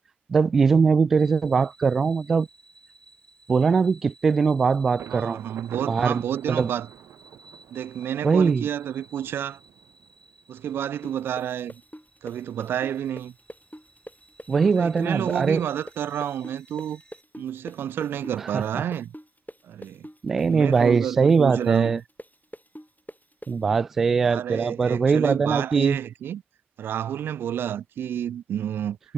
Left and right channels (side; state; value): left; quieter; 5.6 dB